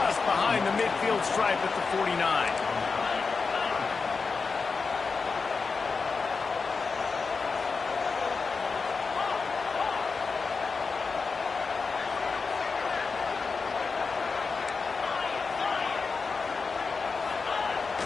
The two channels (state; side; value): quieter; right; 4.7 dB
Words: behind the midfield stripe at the 49.